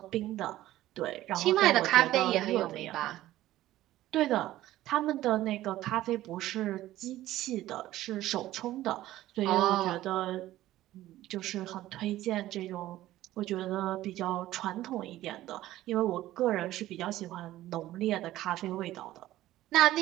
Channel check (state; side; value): quieter; left; 15.0 dB